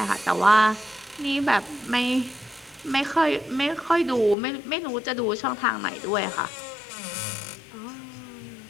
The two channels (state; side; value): drops out; right; at 4.4 s